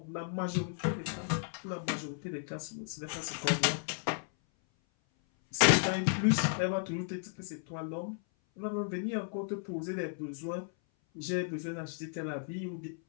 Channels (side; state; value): right; silent; 55 dB below the other